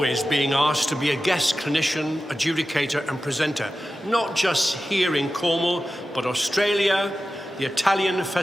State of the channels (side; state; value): both; normal; correlation 0.93